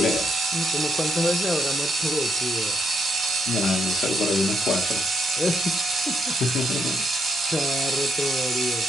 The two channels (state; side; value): normal; both; correlation 0.77